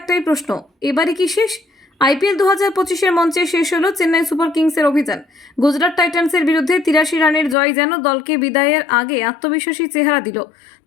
প্রশ্ন, এবারে কি শেষ? আইপিএল 2025-এর মঞ্চে শেষ হলো চেন্নাই সুপার কিংসের অভিযান। গুজরাট টাইটান্সের বিরুদ্ধে 83 রানের জয় যেন দলকে বিদায়ের আগে আত্মবিশ্বাসী চেহারা দিল।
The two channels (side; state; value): right; drops out; at 7.6 s